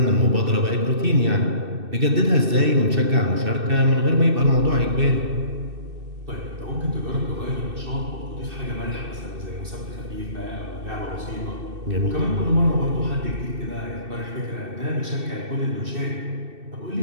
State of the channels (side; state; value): left; late; 2.6 ms